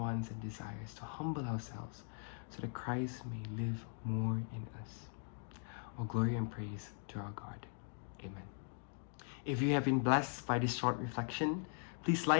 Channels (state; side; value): silent; right; 51 dB below the other